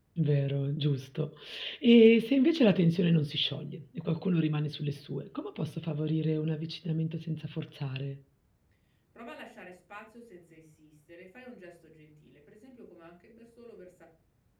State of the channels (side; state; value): both; identical; correlation 1.00